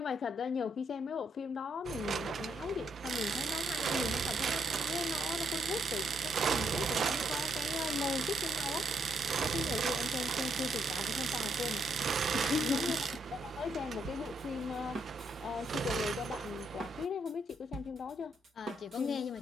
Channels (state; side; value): normal; both; correlation 0.76